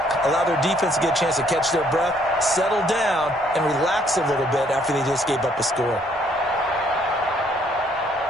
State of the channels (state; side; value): normal; both; correlation 0.65